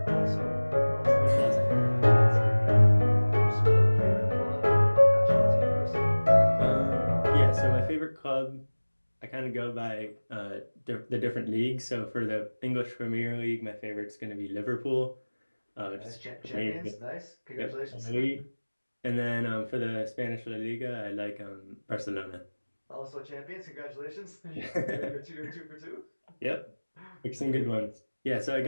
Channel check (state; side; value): inverted; both; correlation -1.00